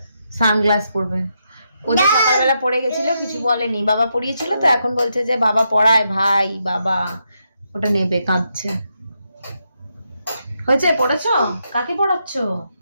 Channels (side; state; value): both; inverted; correlation -0.81